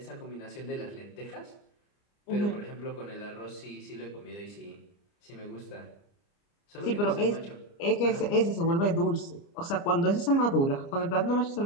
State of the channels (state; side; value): late; right; 29 ms